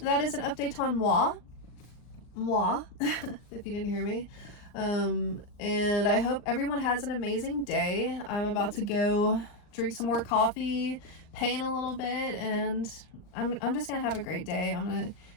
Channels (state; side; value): late; right; 39 ms